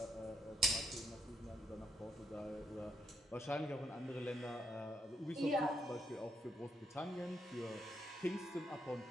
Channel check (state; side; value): normal; both; correlation 0.78